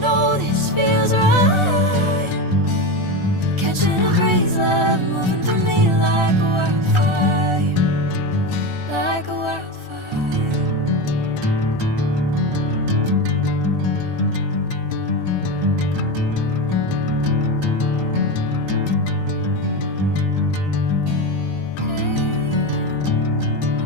know this feels right. Catching a craze, love, moving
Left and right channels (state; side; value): late; left; 1.4 ms